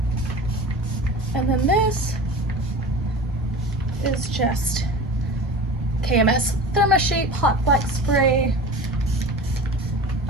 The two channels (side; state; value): both; normal; correlation 0.35